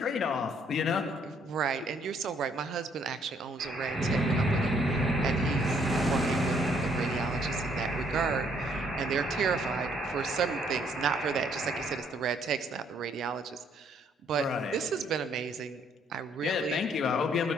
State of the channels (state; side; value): normal; both; correlation 0.66